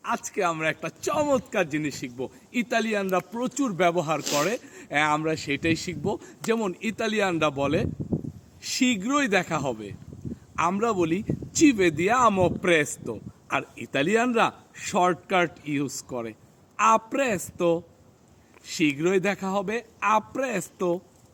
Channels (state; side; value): identical; both; correlation 1.00